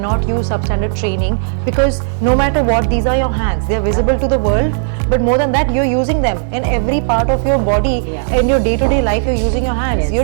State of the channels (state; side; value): silent; left; 70 dB below the other